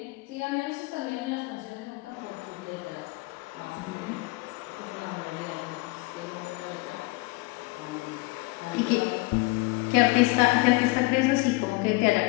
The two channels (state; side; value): quieter; right; 24.1 dB